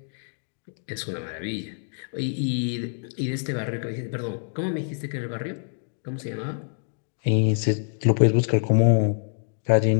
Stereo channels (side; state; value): right; silent; digital silence